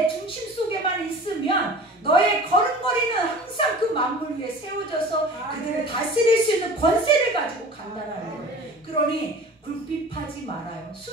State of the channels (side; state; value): both; normal; correlation 0.41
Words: 중심 속에만 있으면 너의 걸음걸이는 항상 그 만물 위에 세워져서 그들을 다스릴 수 있는 권세를 가지고 간다라는 거예요. 그러니 굴핍하지 말아요.